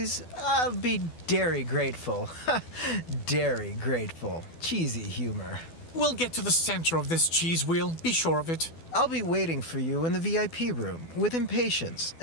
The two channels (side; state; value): right; late; 12 ms